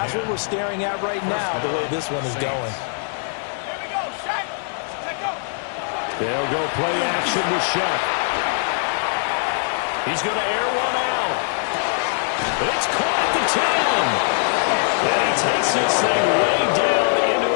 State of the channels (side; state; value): right; silent; digital silence